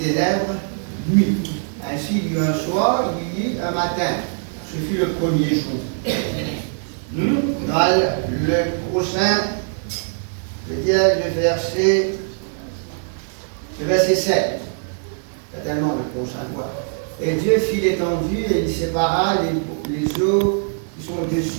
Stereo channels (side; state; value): left; silent; 65 dB below the other